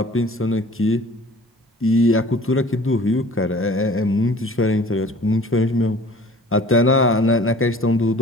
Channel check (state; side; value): normal; both; correlation 0.47